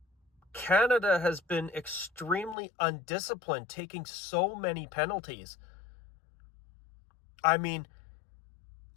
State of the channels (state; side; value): drops out; right; at 2.6 s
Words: Canada has been extremely undisciplined, taking so many penalties. I mean,